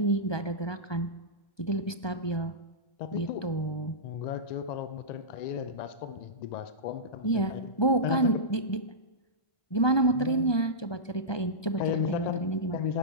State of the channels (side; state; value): right; late; 1.2 ms